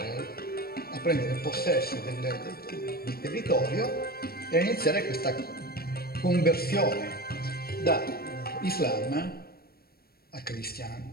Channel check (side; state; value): right; late; 0.44 ms